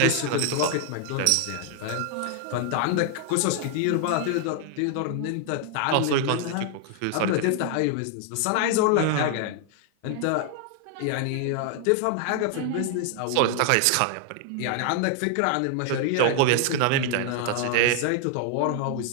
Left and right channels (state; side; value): different; both; correlation 0.00